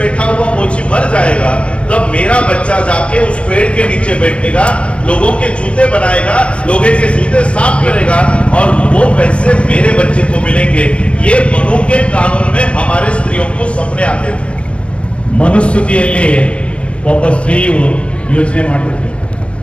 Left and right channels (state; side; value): late; right; 0.060 ms